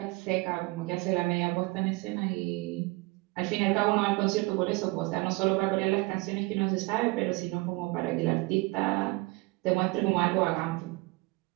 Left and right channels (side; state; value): left; quieter; 24.0 dB